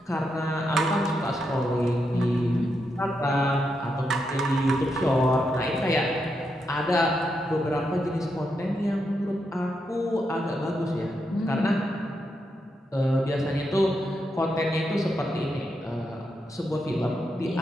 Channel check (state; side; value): normal; both; correlation 0.83